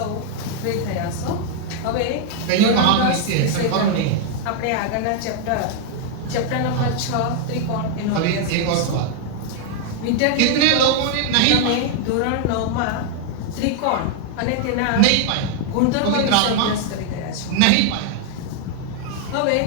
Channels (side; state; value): both; different; correlation 0.00